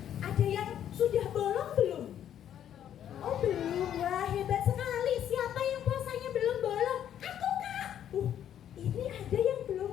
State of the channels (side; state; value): right; quieter; 10.2 dB